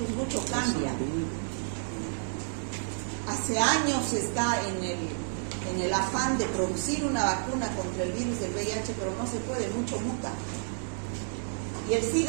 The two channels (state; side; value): silent; left; digital silence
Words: mucho cambia. Hace años está en el afán de producir una vacuna contra el virus del VIH, pero no se puede, mucho muta. Y el